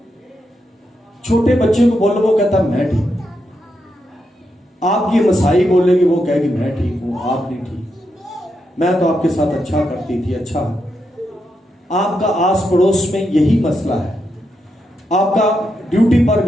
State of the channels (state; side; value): normal; both; correlation 0.83